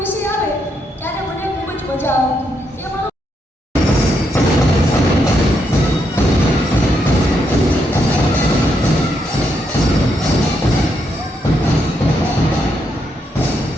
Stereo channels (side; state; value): both; normal; correlation 0.79